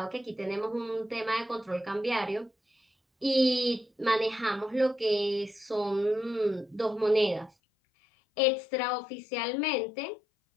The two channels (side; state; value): right; drops out; at 7.5 s